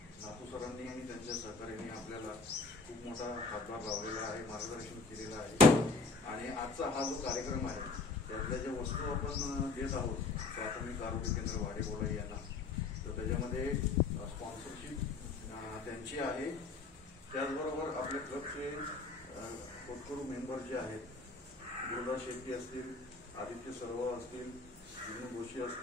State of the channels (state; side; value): quieter; right; 4.0 dB